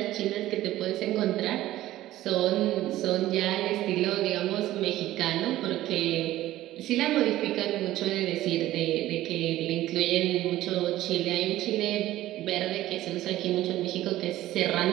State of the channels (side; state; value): left; quieter; 15.0 dB